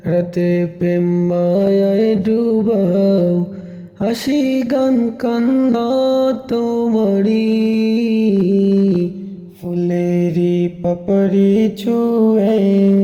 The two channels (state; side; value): identical; both; correlation 1.00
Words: রাতে প্রেম মায়ায় ডুবাও, হাসি গান কান্না তোমারি, ফুলেরি পাপড়ি ছুঁয়ে